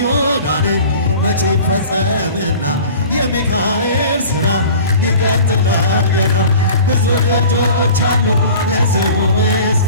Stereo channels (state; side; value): inverted; both; correlation -0.42